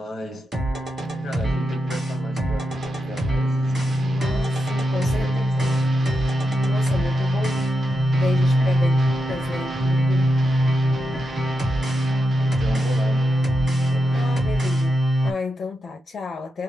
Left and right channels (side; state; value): both; normal; correlation 0.86